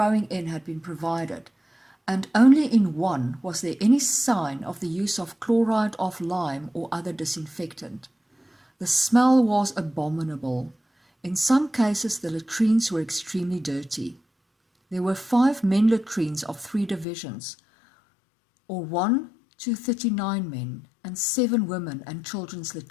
in had been provided, and only in one was there any sign of the use of chloride of lime or other disinfectant. The smell was abominable. In some cases the latrines were extremely dirty. There were 5 men latrines of 3 divisions, or 1 to 39 men, and 7 women and children's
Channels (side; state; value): right; drops out; at 17.1 s